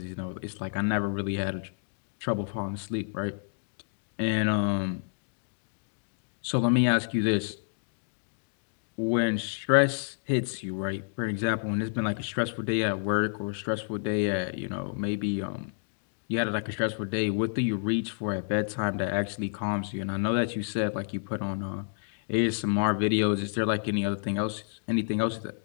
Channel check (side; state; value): right; silent; digital silence